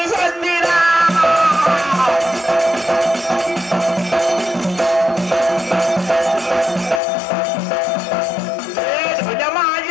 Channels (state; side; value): drops out; right; at 7.0 s